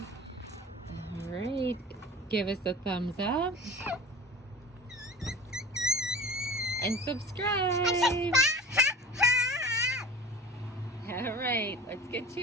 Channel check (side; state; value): both; normal; correlation 0.37